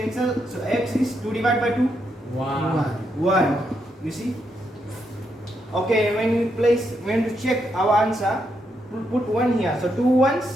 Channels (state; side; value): normal; both; correlation 0.80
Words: So x is 2 divided by 2? 1. You see? Okay, when we check our answer, we'll put 1 here. So 2